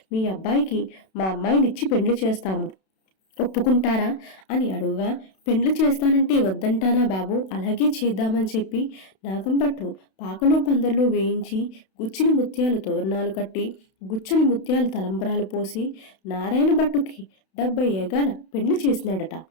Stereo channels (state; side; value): late; right; 32 ms